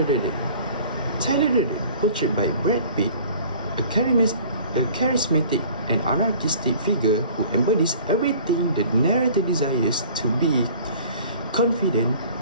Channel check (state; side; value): inverted; both; correlation -0.49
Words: Durden. Tyler Durden, portrayed by Brad Pitt, a charismatic and anarchistic figure who embodies everything the narrator desires to be: confident,